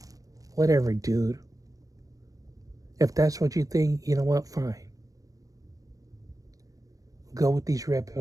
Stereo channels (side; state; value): left; late; 0.17 ms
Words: Whatever, dude. If that's what you think, you know what? Fine. Go with these red